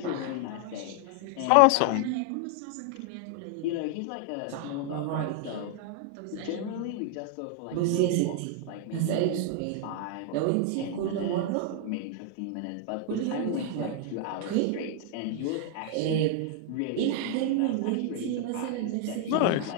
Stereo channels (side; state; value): both; different; correlation 0.00